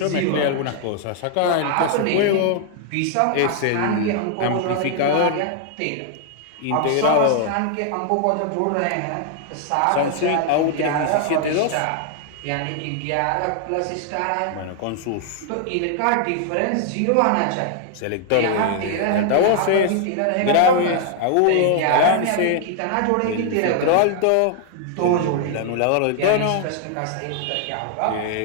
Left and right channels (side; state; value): both; different; correlation 0.00